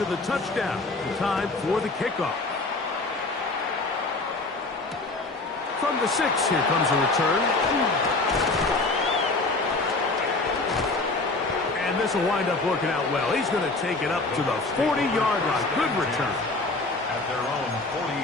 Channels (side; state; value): right; quieter; 3.3 dB